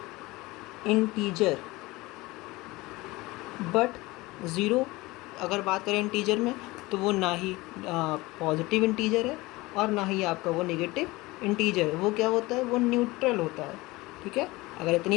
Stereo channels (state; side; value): quieter; right; 21.2 dB